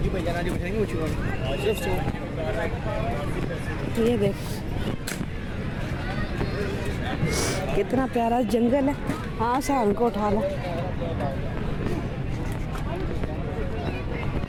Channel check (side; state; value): both; identical; correlation 1.00